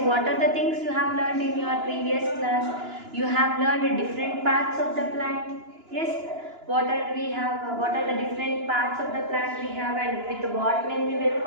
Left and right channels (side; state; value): left; late; 2.9 ms